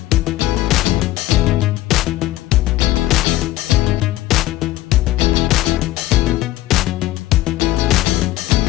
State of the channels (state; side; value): quieter; right; 15.8 dB